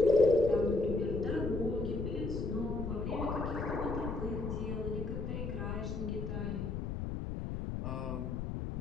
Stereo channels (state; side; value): noise; left; rumble, 3 dB below the sound